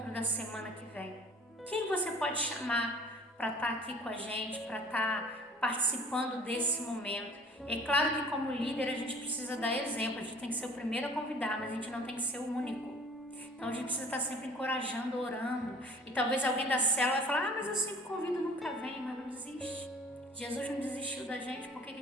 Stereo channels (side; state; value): both; normal; correlation 0.49